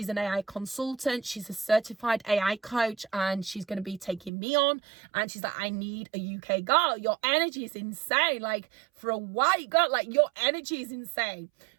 an AI consultant. She's a certified AI coach, and she's going to be taking me on. And she's like, I need a UK girl. Your energy is insane. Like, for a white girl, like, your energy is insane.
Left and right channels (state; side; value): drops out; left; at 4.3 s